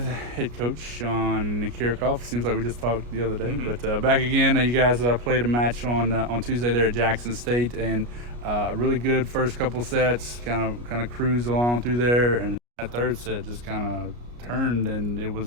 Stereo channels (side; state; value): left; late; 33 ms